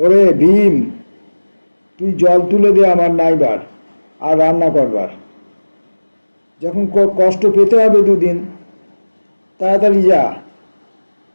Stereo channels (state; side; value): inverted; both; correlation -1.00